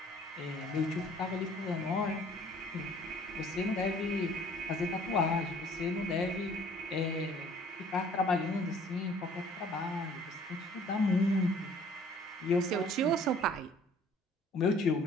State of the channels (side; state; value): both; normal; correlation 0.55